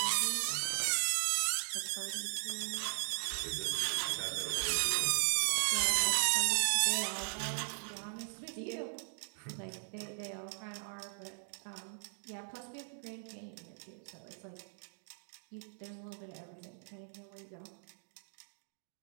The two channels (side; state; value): left; silent; digital silence